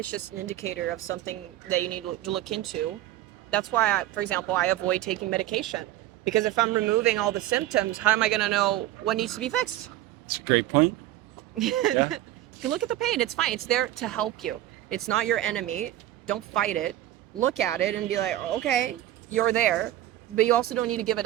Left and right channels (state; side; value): quieter; left; 14.1 dB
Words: just an indicator of something that you need to look into. That's why, for example, I avoid taking medication because if I'm removing all the symptoms, how am I going to know what needs to be fixed? It's a great point. Yeah. Look at the pain. It's fine. It's there to help you. It's not your enemy. Don't fight it. Look at it and be like, okay, you're there, but you also don't need to give it